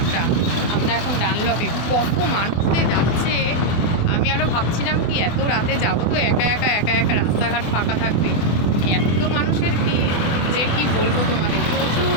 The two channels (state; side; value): late; right; 24 ms